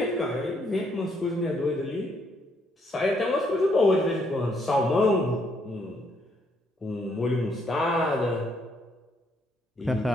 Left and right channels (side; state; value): both; normal; correlation 0.72